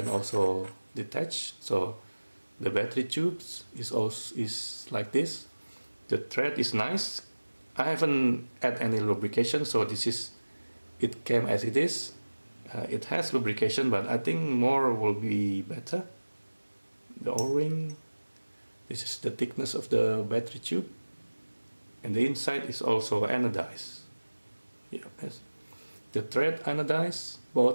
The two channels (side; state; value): both; inverted; correlation -1.00